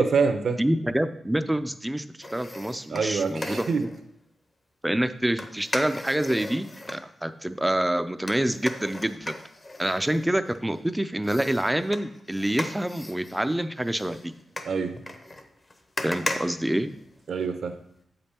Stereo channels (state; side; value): normal; both; correlation 0.96